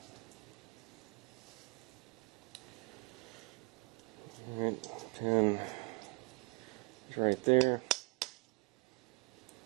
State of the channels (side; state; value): left; quieter; 28.0 dB